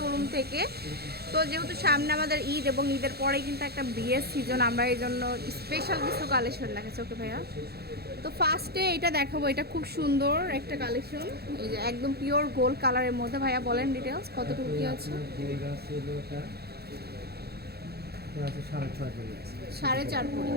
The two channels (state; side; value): late; left; 0.46 ms